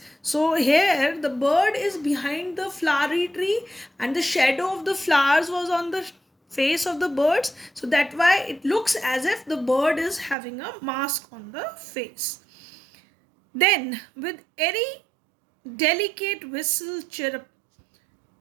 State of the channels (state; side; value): drops out; left; at 10.4 s